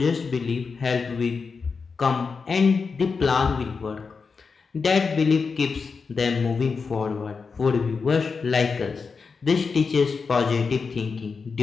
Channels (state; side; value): quieter; right; 5.0 dB